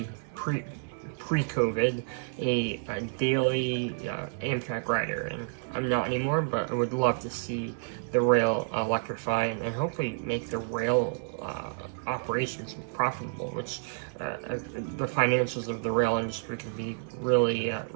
pre-COVID, a daily Amtrak rider, and I'm not anymore, but I would love to see the rail electrify and hopefully make the rail operations profitable, which the financials of the rail industry can be really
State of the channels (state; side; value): silent; left; digital silence